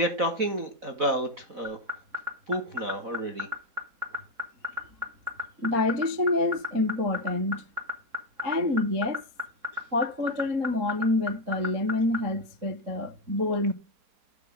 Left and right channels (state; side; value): late; left; 3.8 ms